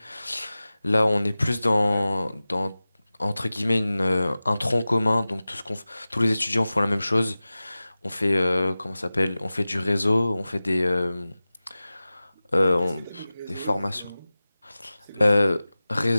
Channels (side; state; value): both; inverted; correlation -0.97